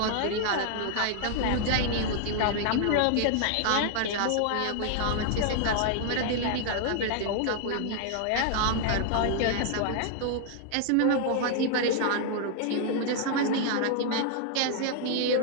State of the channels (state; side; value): different; both; correlation 0.00